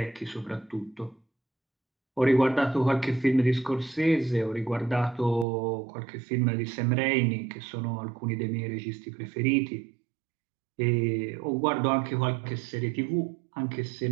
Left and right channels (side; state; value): left; drops out; at 5.5 s